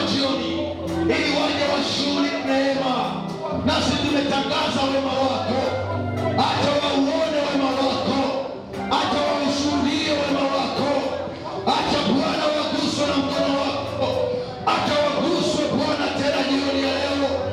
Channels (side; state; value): both; identical; correlation 1.00